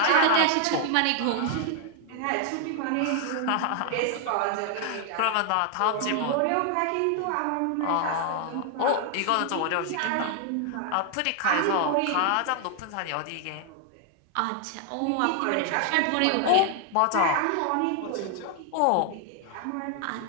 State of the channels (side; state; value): both; different; correlation 0.00